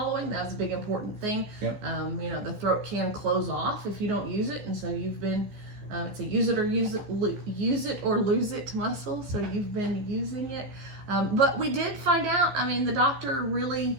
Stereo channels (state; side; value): late; left; 15 ms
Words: that was a big important thing. You know, the throat can close off if you don't use it, and so you've been it's a use it or lose it muscle, so you've been using it. But we did find out, I mean, the doctor really